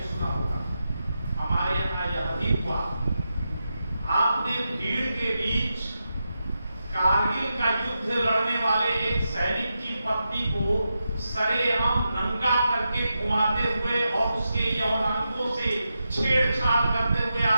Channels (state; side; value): inverted; both; correlation -0.88